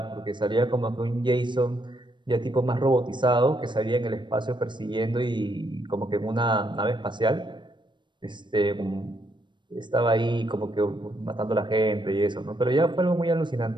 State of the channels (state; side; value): late; left; 0.22 ms